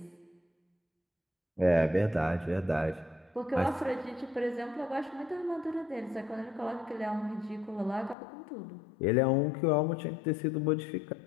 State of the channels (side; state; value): right; drops out; at 8.2 s